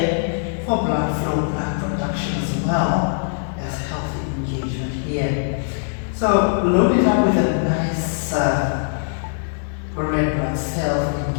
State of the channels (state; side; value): silent; right; digital silence